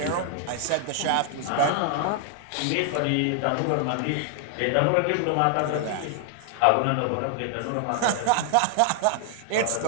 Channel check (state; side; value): different; both; correlation 0.00